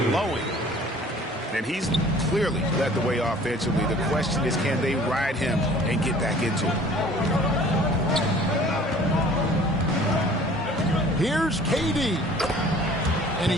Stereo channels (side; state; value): both; normal; correlation 0.50